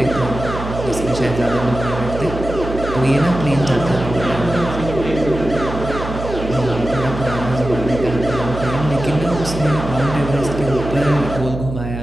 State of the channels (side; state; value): right; noise; hum, 8 dB below the sound